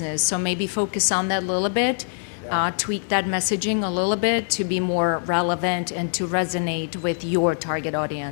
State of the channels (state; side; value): silent; right; digital silence